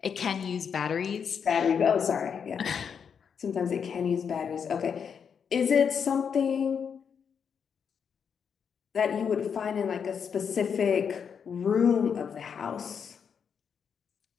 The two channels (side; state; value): right; quieter; 6.9 dB